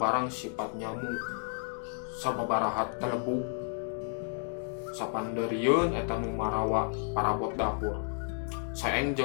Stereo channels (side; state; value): right; silent; 57 dB below the other